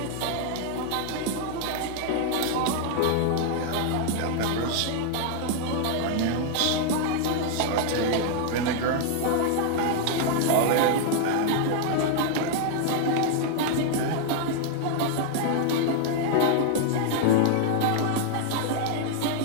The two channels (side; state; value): both; different; correlation 0.00